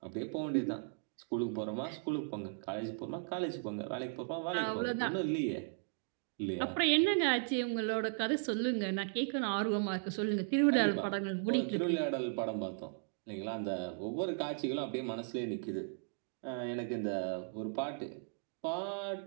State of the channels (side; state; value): left; silent; digital silence